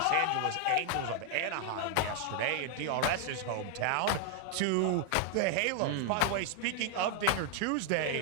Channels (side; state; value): both; different; correlation 0.00